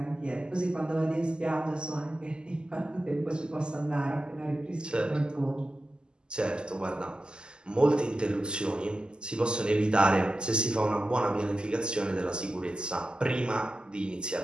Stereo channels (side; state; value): left; late; 0.047 ms